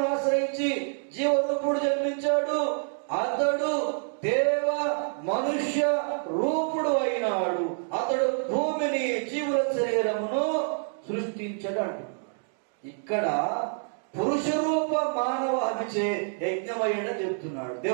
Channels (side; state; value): left; silent; 60 dB below the other